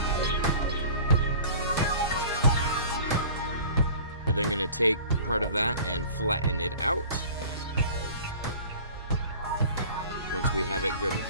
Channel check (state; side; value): inverted; both; correlation -0.43